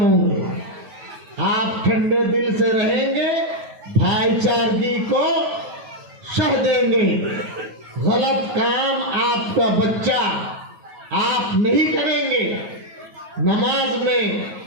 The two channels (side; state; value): left; late; 9.3 ms